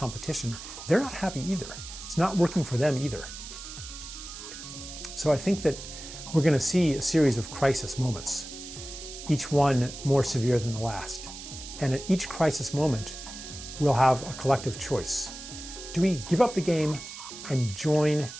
they're not happy either. It's not working for them either. So I think that we're going to see a series of crisis moments, each one more severe than the last. And at each crisis moment, we'll have a collective choice. Do we give up the game and join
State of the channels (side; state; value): right; noise; hiss, 12 dB below the sound